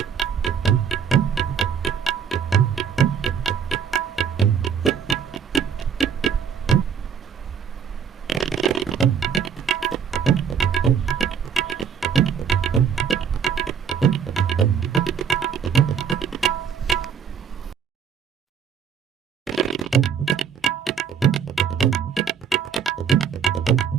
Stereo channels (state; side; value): quieter; left; 7.4 dB